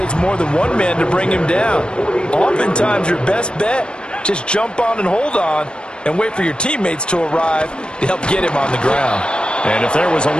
more than one man to bring him down. Oftentimes, your best bet, just jump on and hold on and wait for your teammates to arrive to help get him on the ground. And if there was a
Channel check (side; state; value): right; late; 0.054 ms